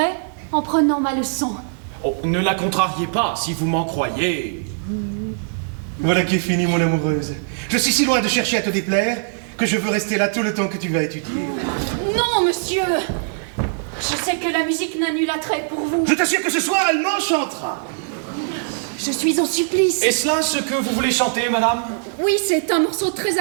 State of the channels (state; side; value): silent; left; digital silence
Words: en prenant ma leçon. Oh, ne la contrariez pas, si vous m'en croyez. Voilà qui est fini, mon amoureuse. Je suis si loin de chercher à te déplaire que je veux rester là tout le temps que tu vas étudier. Non, monsieur. Je sais que la musique n'a nul attrait pour vous. Je t'assure que ce soir, elle m'enchantera. Je suis en supplice. Est-ce là ce que vous voulez chanter, madame? Oui, c'est un morceau très